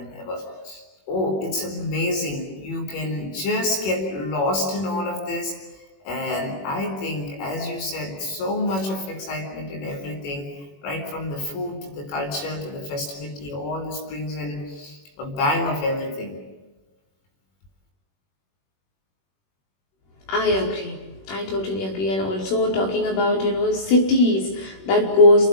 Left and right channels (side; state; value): right; late; 21 ms